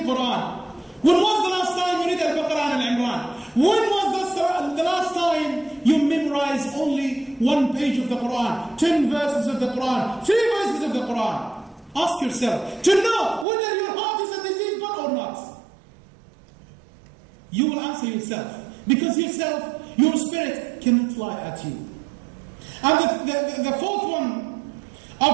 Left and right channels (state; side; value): drops out; left; at 13.5 s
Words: Quran? When was the last time you read Al-Baqarah and Al-Imran? When was the last time you memorized only one page of the Quran, 10 verses of the Quran, 3 verses of the Quran? Ask yourself to know whether your heart is a diseased one or not. You will answer yourself, because yourself, your spirit cannot lie at you. And the fourth one